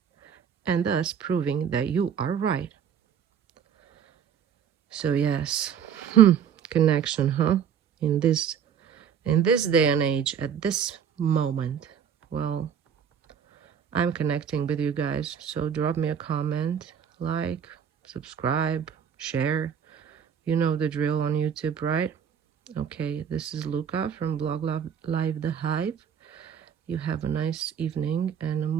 and thus proving that you are right. So yes, connection, huh? In this in this day and age, at this moment, well, I'm connecting with you guys. So drop me a comment, like, subscribe, share. You know the drill on YouTube, right? Okay, this is Luca from Blog Live the Hive. You have a nice evening and a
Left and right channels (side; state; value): left; quieter; 8.0 dB